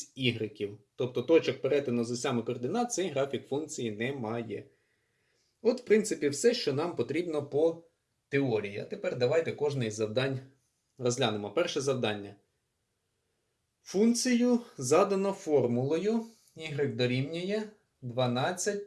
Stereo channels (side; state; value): both; identical; correlation 1.00